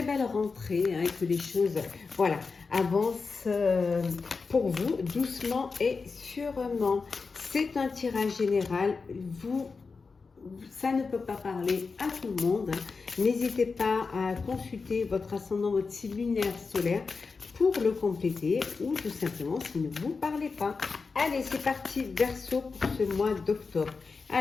belle rentrée, et que les choses avancent pour vous doucement et sûrement. C'est un tirage général. Ça ne peut pas parler à tout le monde. N'hésitez pas à consulter votre ascendant, votre signe lunaire solaire pour le compléter ou tout simplement s'il ne vous parlez pas. Allez, c'est parti Verseau pour ce mois d'octobre.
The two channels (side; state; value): right; quieter; 4.6 dB